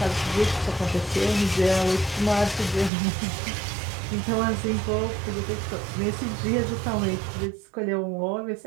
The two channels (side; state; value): left; drops out; at 2.9 s